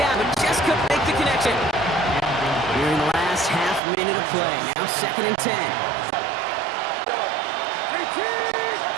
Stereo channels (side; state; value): left; drops out; at 3.8 s